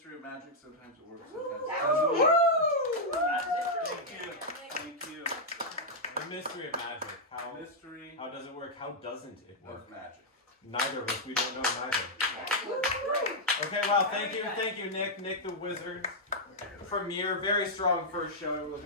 of magic. Sometimes it works, sometimes it doesn't. Thank you. The mystery of magic. Mystery How does it work? How doesn't it work? of magic. Neither of us. We don't know neither. Okay, well, thank you, Nick the Wizard. Premiere, very strong first show.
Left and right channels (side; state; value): both; normal; correlation -0.05